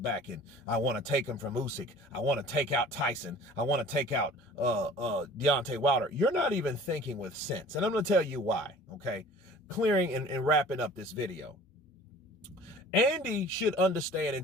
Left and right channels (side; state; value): both; normal; correlation 0.46